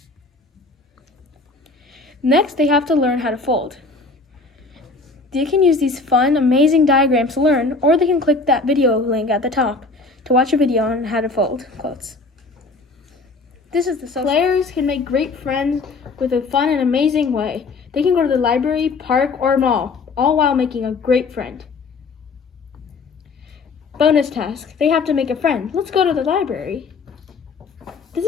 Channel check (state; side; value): quieter; right; 3.9 dB